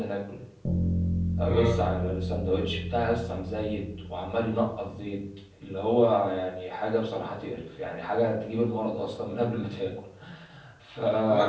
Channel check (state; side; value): identical; both; correlation 1.00